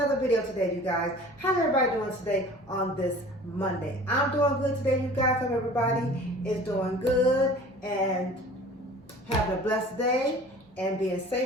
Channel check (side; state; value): both; normal; correlation 0.45